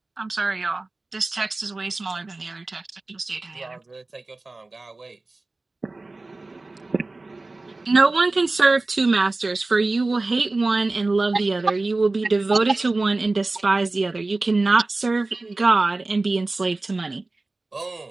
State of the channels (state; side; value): quieter; left; 3.2 dB